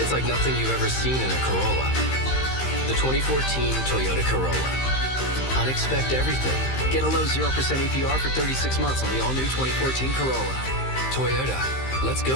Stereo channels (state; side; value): late; right; 15 ms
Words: like nothing you've ever seen in a Corolla. The 2014 Toyota Corolla. Unexpect everything. Get a low 0% APR for 36 months on the all-new 2014 Corolla. Toyota. Let's